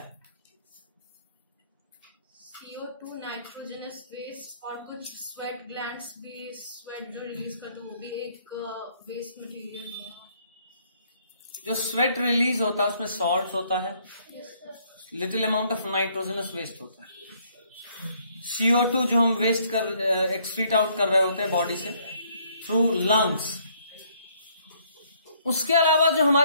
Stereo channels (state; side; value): inverted; both; correlation -0.67